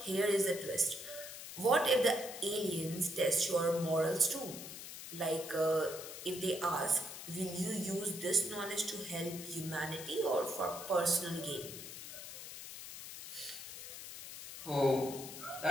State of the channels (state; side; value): noise; left; hiss, 10 dB below the sound